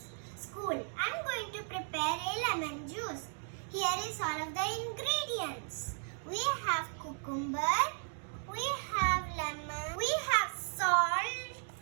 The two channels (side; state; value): left; silent; 54 dB below the other